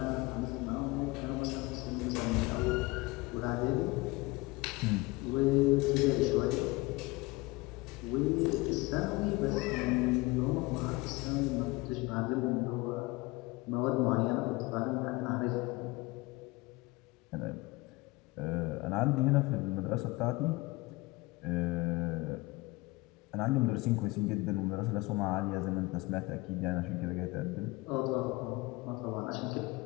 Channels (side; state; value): right; quieter; 22.9 dB